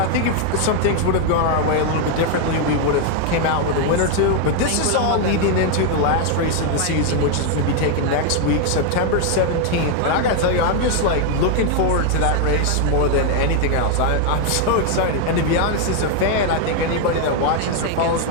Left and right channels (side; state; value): both; different; correlation 0.00